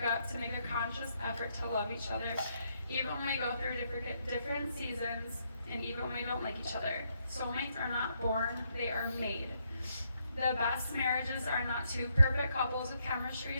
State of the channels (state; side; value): inverted; both; correlation -0.76